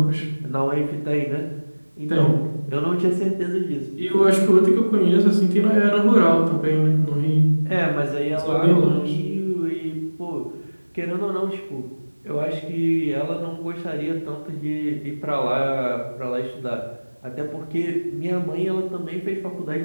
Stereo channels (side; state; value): both; inverted; correlation -1.00